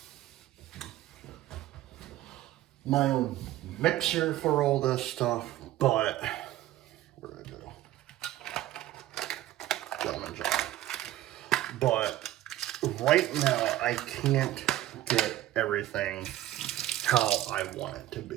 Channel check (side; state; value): left; quieter; 14.4 dB